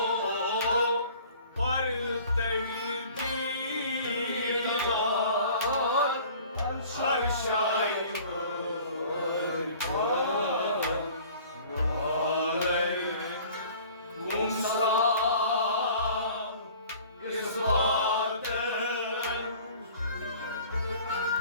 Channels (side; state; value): both; inverted; correlation -0.48